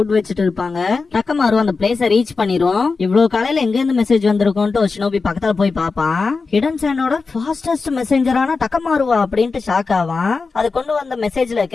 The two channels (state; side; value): quieter; right; 4.4 dB